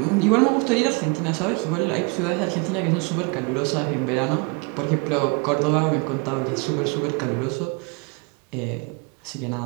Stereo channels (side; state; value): left; quieter; 31.0 dB